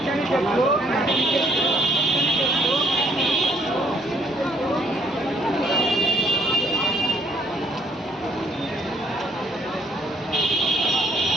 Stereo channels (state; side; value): normal; both; correlation 0.64